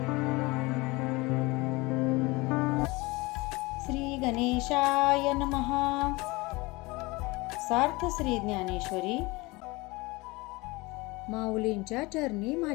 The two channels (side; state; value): right; quieter; 23.4 dB